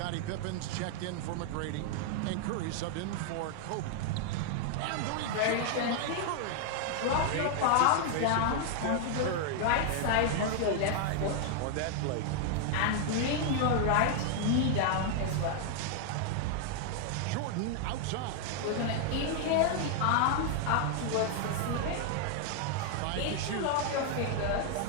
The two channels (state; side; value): different; both; correlation 0.00